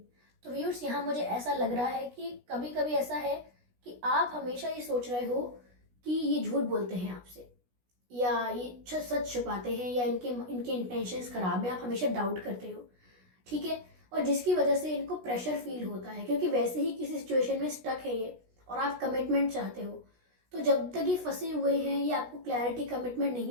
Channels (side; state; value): left; late; 16 ms